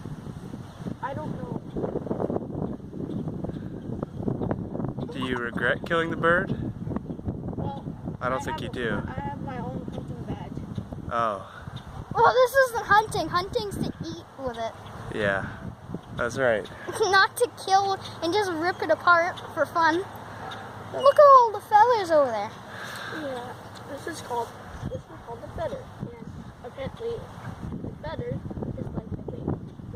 I don't know. Do you regret killing the bird? Well, I don't think you do. I have my own hunting badge. Oh, Well, this isn't hunting. Hunting's to eat with it. yeah. That's right. Not to kill and just rip it apart for fun. Look at all the feathers over there. Yeah, this is called the feather. And apparently, the feather is like the thing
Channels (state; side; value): identical; both; correlation 1.00